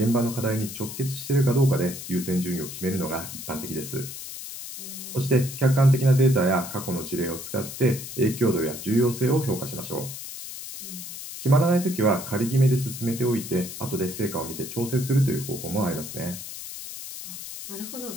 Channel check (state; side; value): noise; left; hiss, 10 dB below the sound